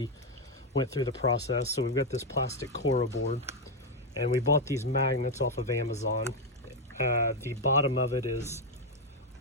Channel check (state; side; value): normal; both; correlation 0.04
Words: went through the process. So we've got this plastic Coro board, and we bought these magnets off of Amazon. The bottom of it is